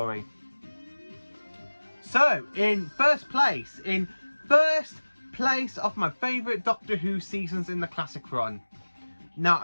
So, in first place of my favourite Doctor Who seasons in the classic run. Now,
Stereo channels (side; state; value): both; inverted; correlation -1.00